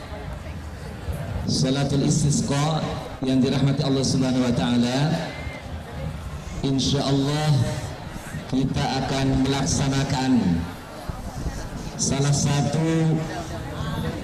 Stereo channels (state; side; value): identical; both; correlation 1.00